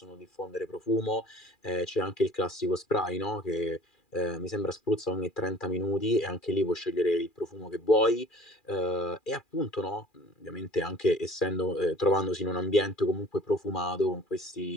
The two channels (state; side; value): late; right; 2.4 ms